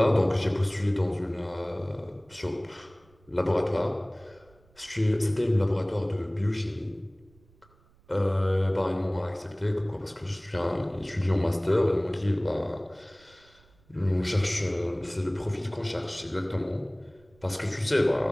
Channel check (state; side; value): noise; right; rumble, 30 dB below the sound